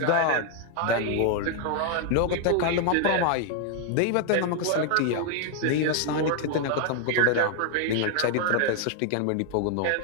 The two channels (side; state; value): both; different; correlation 0.00